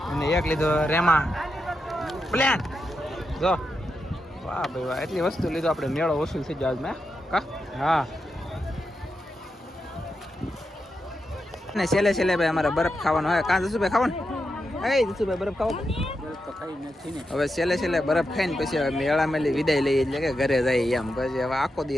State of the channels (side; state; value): both; normal; correlation 0.87